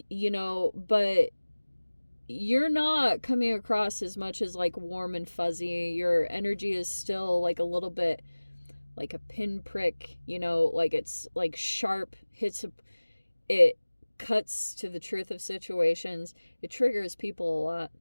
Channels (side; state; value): both; inverted; correlation -1.00